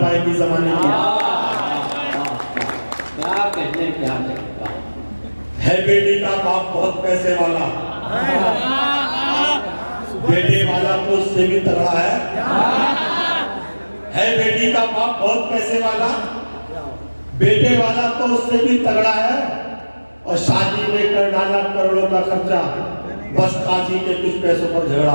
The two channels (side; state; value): both; inverted; correlation -1.00